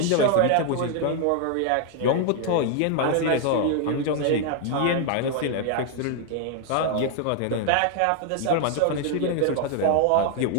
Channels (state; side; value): different; both; correlation 0.00